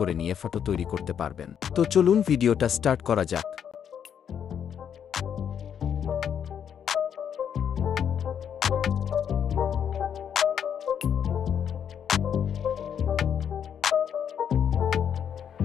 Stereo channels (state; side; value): quieter; right; 8.4 dB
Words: নিয়ে ফটো তৈরি করতে পারবেন। তো চলুন ভিডিওটা স্টার্ট করা যাক।